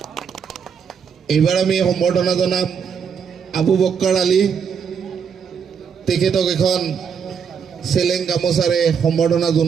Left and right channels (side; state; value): left; quieter; 6.8 dB